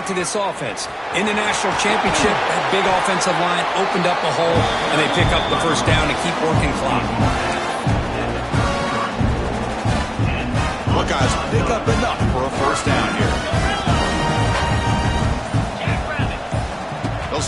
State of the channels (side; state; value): both; identical; correlation 1.00